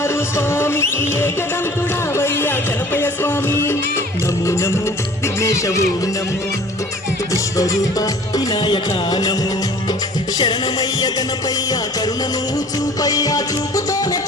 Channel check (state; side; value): normal; both; correlation 0.48